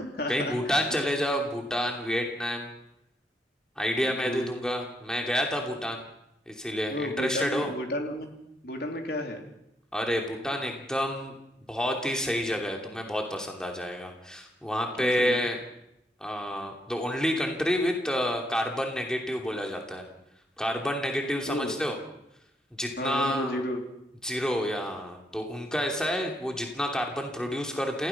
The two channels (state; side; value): normal; both; correlation 0.75